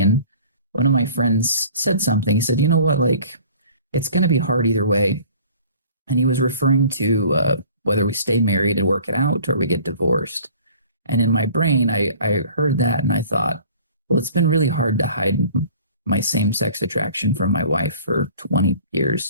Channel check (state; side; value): inverted; both; correlation -0.49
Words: And one of my friends said something. He said, you know what, like, it's going to be hard either way. And he was referring to whether we stay married and work it out or we get divorced. And in my brain, I heard that and I thought, well, it's been really hard to hide my same-sex attraction from my wife for 20